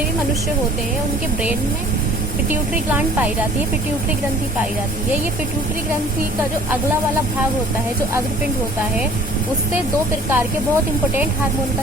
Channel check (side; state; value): both; normal; correlation 0.51